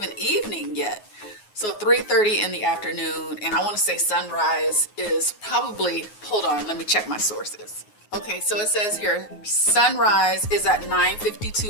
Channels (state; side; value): late; right; 9.5 ms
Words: evening yet. So 3:30 in the afternoon, and I want to say sunrise is probably, hold on, let me check my sources. Okay, so it says here, sunrise is at